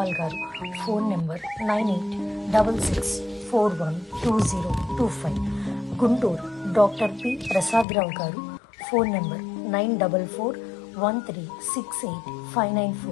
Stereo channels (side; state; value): right; drops out; at 7.9 s